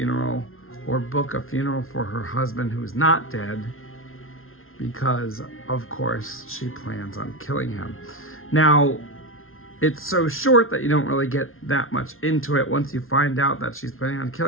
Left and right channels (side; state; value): right; late; 0.61 ms